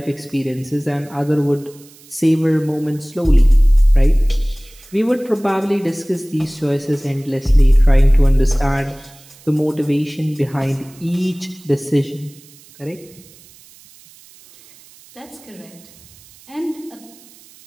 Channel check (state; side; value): noise; right; hiss, 25 dB below the sound